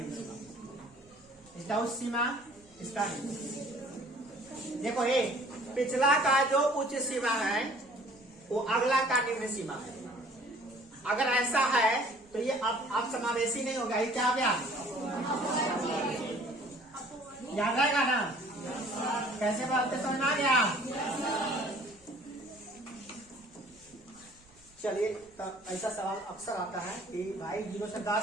सीमा, इसका उच्च सीमा, इसका निम्न। देखो पिछला का जो उच्च सीमा है वो अगला का निम्न सीमा है। अगर ऐसा है तो ये अब समावेशी नहीं होगा। ये क्या हो गया? याद रहेगा ना? कैसे बोलते समझ आ गया? चलिए, तो ऐसा सवाल अक्सर आता है कि भाई 0 से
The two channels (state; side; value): noise; right; rumble, 30 dB below the sound